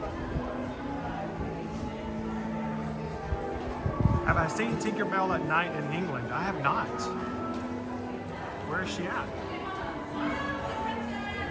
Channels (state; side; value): identical; both; correlation 1.00